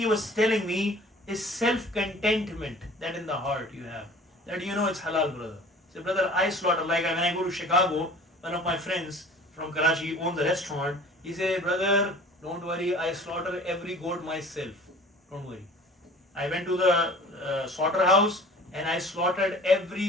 was telling me is self-contentment that in the heart you have. That it's halal, brother. So brother, I slaughter, like when I go to Chicago, one of my friends from Karachi owns a restaurant, he said, brother, don't worry, I slaughter every goat myself. Don't worry. I went to the slaughterhouse and I slaughtered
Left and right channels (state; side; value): normal; both; correlation 0.46